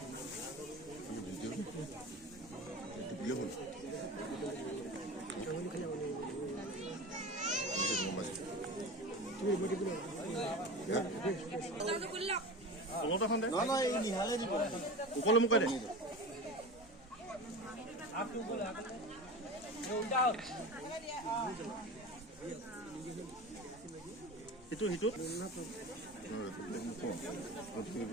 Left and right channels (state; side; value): normal; both; correlation 0.31